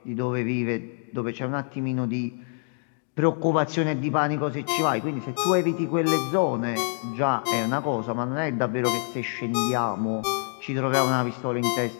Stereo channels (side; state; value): right; silent; 61 dB below the other